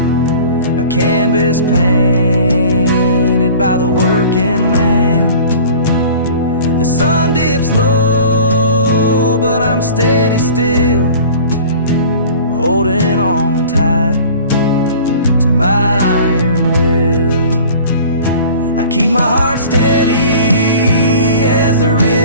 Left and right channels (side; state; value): both; inverted; correlation -0.44